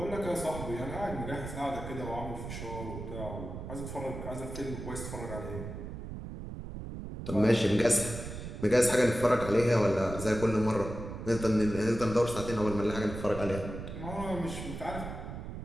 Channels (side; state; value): right; noise; rumble, 8 dB below the sound